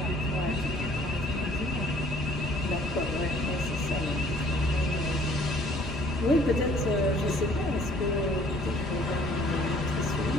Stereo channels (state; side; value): normal; both; correlation 0.57